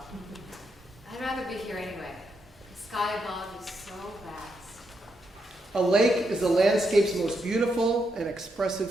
I'd rather be here anyway. The sky above is so vast. A lake is the landscape's most beautiful and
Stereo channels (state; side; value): normal; both; correlation 0.81